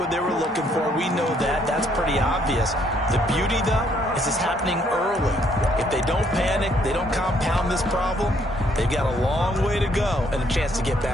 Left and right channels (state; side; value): normal; both; correlation 0.68